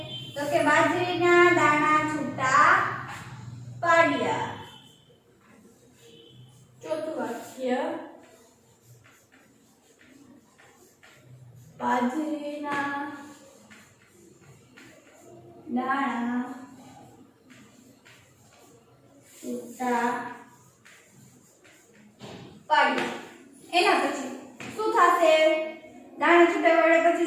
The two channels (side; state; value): both; identical; correlation 1.00